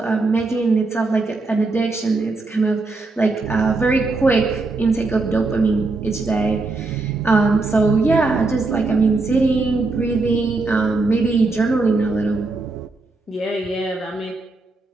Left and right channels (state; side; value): quieter; left; 3.5 dB